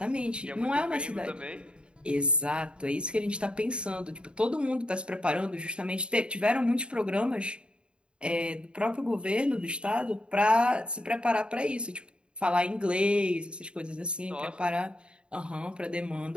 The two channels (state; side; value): late; left; 0.054 ms